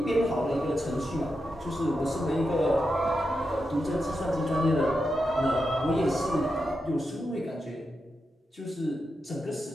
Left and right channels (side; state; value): both; normal; correlation 0.87